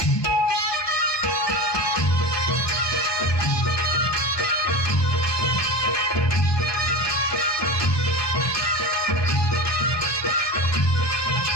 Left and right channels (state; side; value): late; right; 1.2 ms